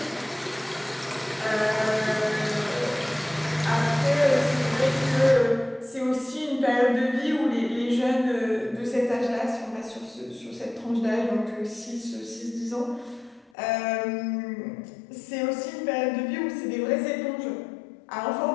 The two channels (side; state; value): right; drops out; at 13.5 s